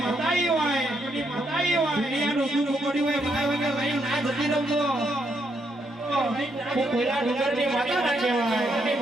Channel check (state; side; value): normal; both; correlation 0.77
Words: કોઈલા ડુંગરની માતા ના કહેવાય